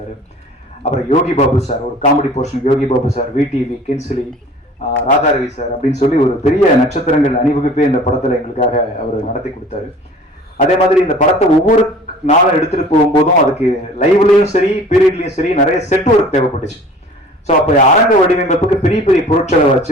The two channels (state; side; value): normal; both; correlation 0.47